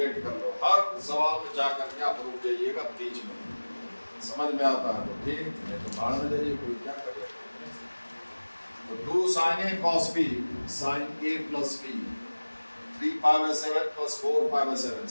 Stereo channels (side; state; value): both; inverted; correlation -1.00